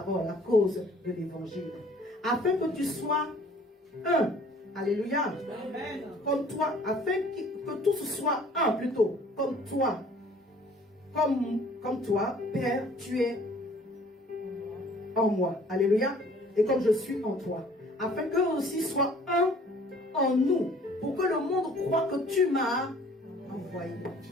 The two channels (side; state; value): both; normal; correlation 0.54